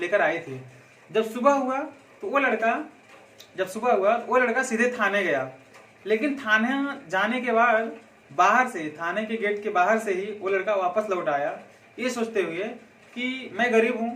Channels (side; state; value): both; identical; correlation 1.00